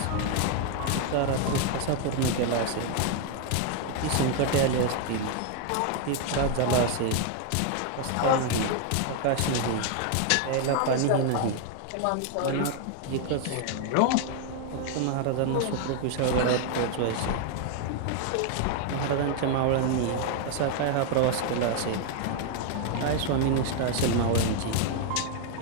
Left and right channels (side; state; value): both; different; correlation 0.00